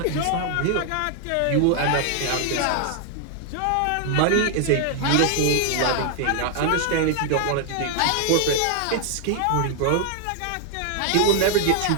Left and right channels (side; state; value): both; different; correlation 0.00